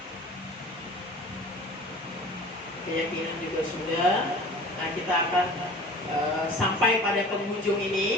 keyakinan juga sudah. Nah, kita akan sampai pada penghujung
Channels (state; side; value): normal; both; correlation 0.42